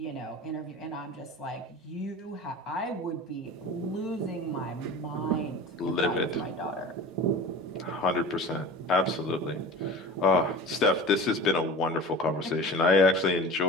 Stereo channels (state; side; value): normal; both; correlation 0.36